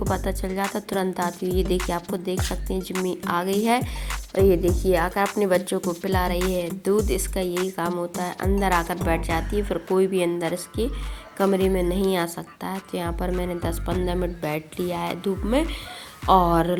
पता चल जाता, तुरंत आती है। ये देखिए, आपको देख सकते हैं जिम्मी आ गई है। और ये देखिए आकर अपने बच्चों को पिला रही है दूध। इसका यही काम होता है, अंदर आकर बैठ जाती है, फिर कोई भी अंदर इसके कमरे में नहीं आ सकता है। तो यहाँ पर मैंने 10-15 मिनट बैठ लिया है धूप में, और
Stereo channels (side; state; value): both; identical; correlation 1.00